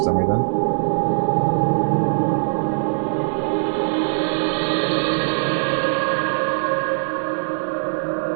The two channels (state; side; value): silent; left; 65 dB below the other